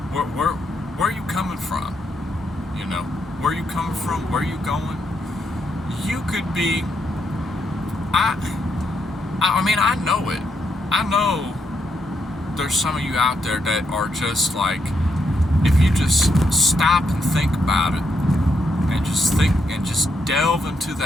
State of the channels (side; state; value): both; normal; correlation 0.79